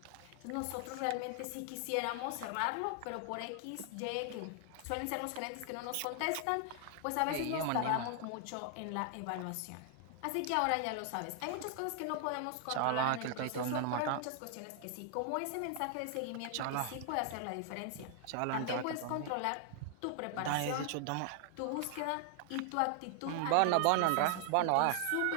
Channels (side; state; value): both; different; correlation 0.00